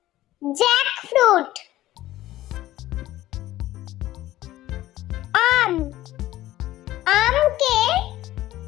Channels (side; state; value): right; quieter; 15.1 dB